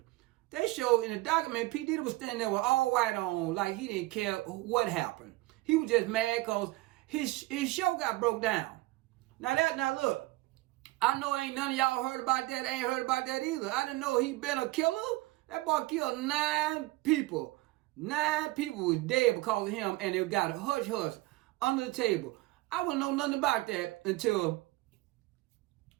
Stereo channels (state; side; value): quieter; left; 19.8 dB